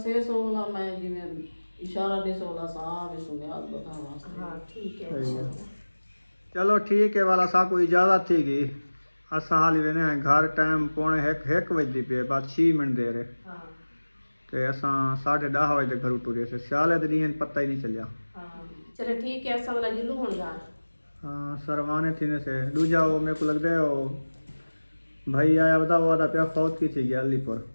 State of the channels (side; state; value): both; inverted; correlation -1.00